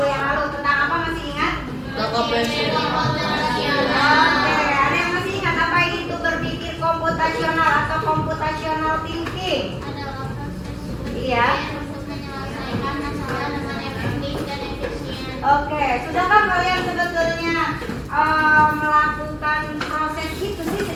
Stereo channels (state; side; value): identical; both; correlation 1.00